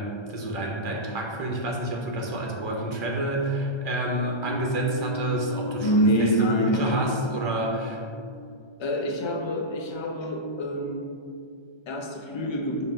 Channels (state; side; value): late; right; 1.3 ms